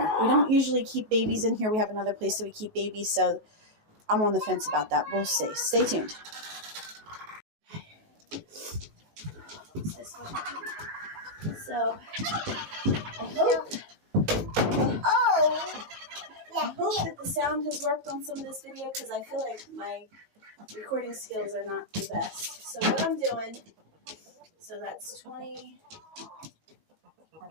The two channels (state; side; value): late; left; 19 ms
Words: We don't usually keep babies in here. We have another place that we keep babies, so I'm on the fence about that. We'll see. Stay tuned. So I hope that the sound has worked on some of this video, because I feel like my recording skills are not the best. So what I'm doing, so that's 20,